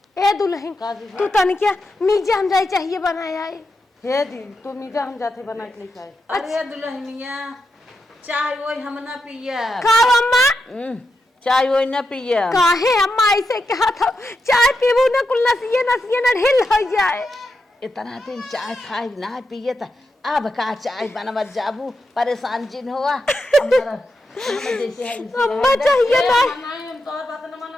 ए दुल्हन तू तन क्या मीजा हम जाए चाहिए बनाया है। हे दिन तू मीजा हम जाते बना के लेके आए। अरे दुल्हनिया चाय वही हम ना पिया। का अम्मा चाय वही ना पिया। काहे अम्मा ऐसे कहा था, चाय पीबू न कुल नसिए नसिए न ढिल हो जाए। इतना दिन चाय खाए ना पिए था, अब का चाय बनवत जाबू परेशान जिन हुआ। अम्मा चाहिए ना। नहीं हम तोहर बात न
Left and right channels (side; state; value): both; normal; correlation 0.86